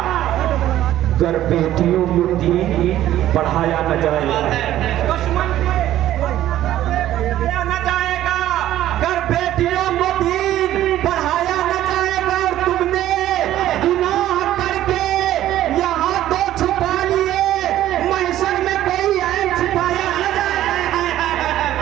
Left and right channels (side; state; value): left; quieter; 13.2 dB